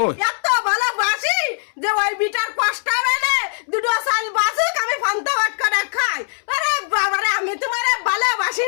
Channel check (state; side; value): silent; right; 66 dB below the other